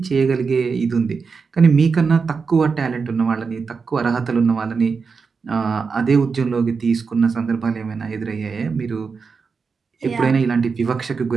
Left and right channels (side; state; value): left; quieter; 5.1 dB